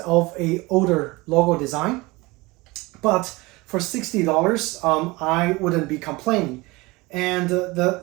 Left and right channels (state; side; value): quieter; left; 22.9 dB